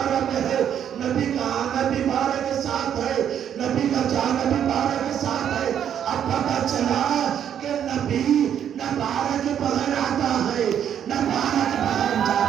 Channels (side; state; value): left; quieter; 9.3 dB